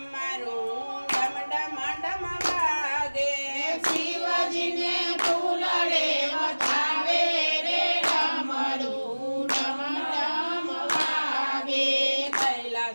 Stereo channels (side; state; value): both; inverted; correlation -1.00